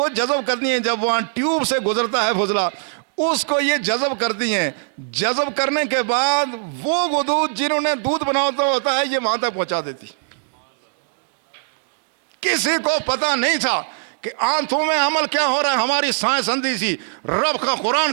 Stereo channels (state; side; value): silent; left; digital silence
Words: جذب کرتی ہیں۔ جب وہاں ٹیوب سے گزرتا ہے فضلہ، اس کو یہ جذب کرتی ہیں۔ جذب کرنے کے بعد وہ غدود جنہوں نے دودھ بناتا ہوتا ہے یہ وہاں تک پہنچا دیتی۔ کسی کو پتا نہیں تھا کہ آنتوں میں عمل کیا ہو رہا ہے، ہماری سائنس اندھی سی۔ رب کا قرآن